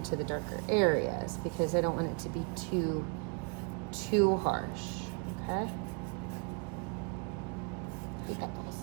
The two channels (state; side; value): quieter; left; 36.0 dB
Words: the darker areas because I don't want it to be too harsh. Okay. Pickles.